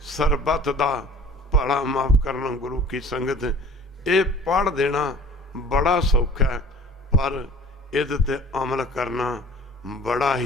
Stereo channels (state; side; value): normal; both; correlation 0.46